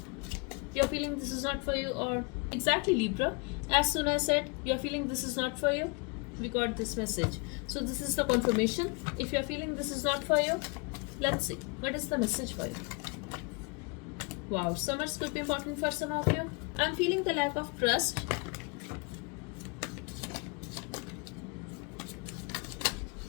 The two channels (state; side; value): quieter; right; 31.7 dB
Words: You're feeling this is not for you, or exactly Libra. As soon as I said you're feeling this is not for you, we got this message. So So this is the confirmation. If you are feeling this is not for you, let's see what is the message for you. Wow, summers could be important for some of you. I'm feeling the lack of trust.